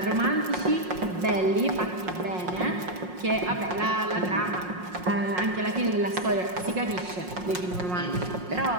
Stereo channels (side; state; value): left; late; 5.5 ms